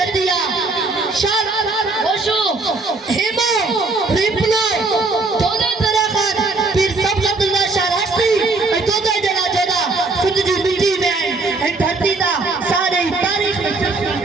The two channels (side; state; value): left; quieter; 3.5 dB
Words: शान होशो हेमो रिपलो दोनों तरह का पीर सब अब्दुल्ला शाह राष्ट्री दोनों जला जोदा सिंध जी मिट्टी में आई धरती दा सारे तारीख में।